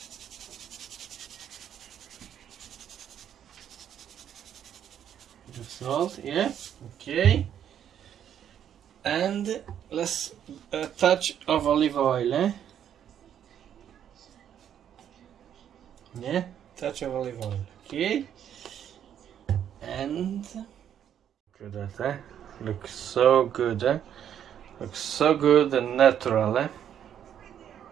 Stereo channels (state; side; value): quieter; left; 9.6 dB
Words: Salt, okay, and let's a touch of olive oil, touch of olive oil, okay, and look at that, looks so good, looks so good and natural,